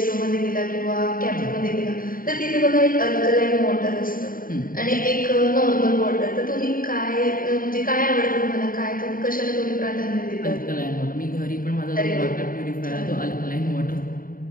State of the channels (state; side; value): late; right; 0.41 ms